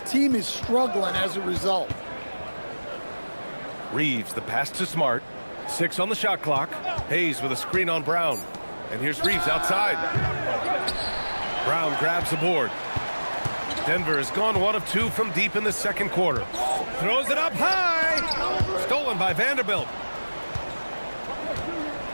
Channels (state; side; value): inverted; both; correlation -1.00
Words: team is struggling as a result. Reeves, the pass to Smart. 6 on the shot clock. Hayes with a screen on Brown. And here's Reeves outside. Brown grabs the board. Denver has gone 1 of 2 from deep in the second quarter. Throws it up high. Stolen by Vanderbilt.